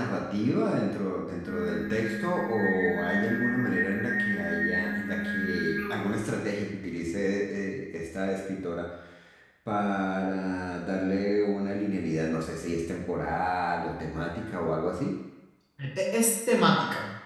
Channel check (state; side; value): identical; both; correlation 1.00